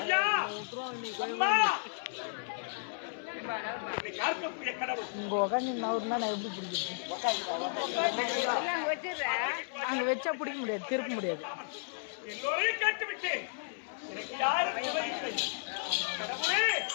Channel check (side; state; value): right; silent; 55 dB below the other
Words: அம்மா யாருக்குரிய கடவுள் இங்க உட்காந்து நவருனா நான் எப்படி பிடிக்கிறது? அங்க வச்சா பிடிக்க முடியாது, திருப்ப முடியாது. எல்லோரையும் கேட்டு விட்டேன். எனக்கு யாரும் விவரிக்கவில்லை. கடவுளே